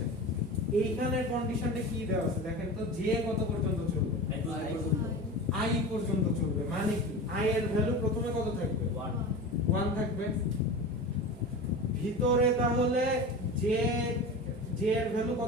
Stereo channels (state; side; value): normal; both; correlation 0.30